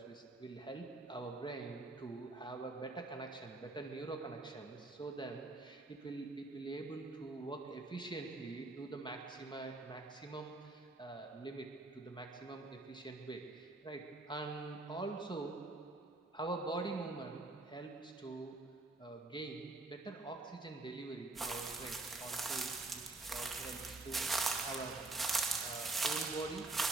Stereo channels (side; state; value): left; quieter; 3.1 dB